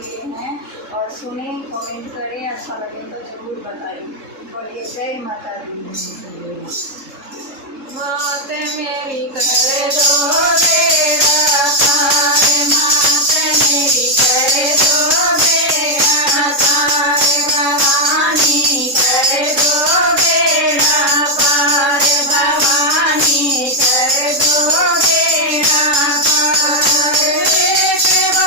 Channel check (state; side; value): late; left; 3.7 ms